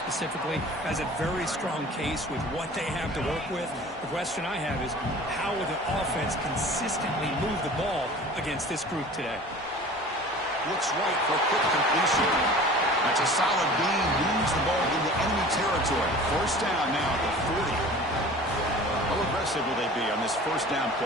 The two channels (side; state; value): both; normal; correlation 0.42